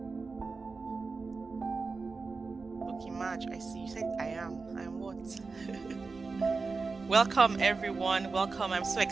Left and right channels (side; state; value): left; quieter; 4.2 dB